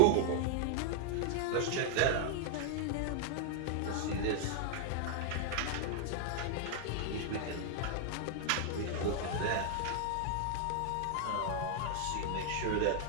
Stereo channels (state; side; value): different; both; correlation 0.00